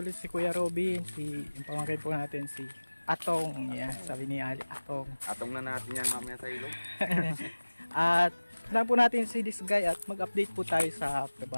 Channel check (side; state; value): both; inverted; correlation -1.00